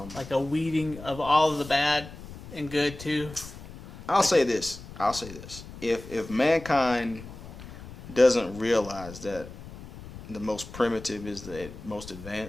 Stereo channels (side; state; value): left; noise; rumble, 15 dB below the sound